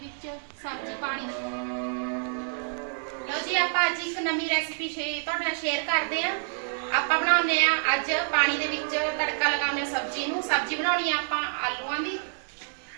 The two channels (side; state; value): left; silent; digital silence